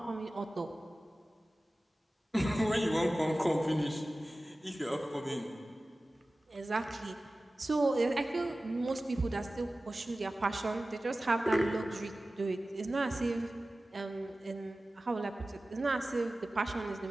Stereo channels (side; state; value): both; normal; correlation 0.96